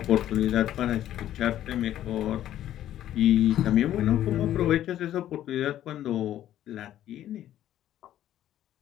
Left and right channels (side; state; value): right; quieter; 12.2 dB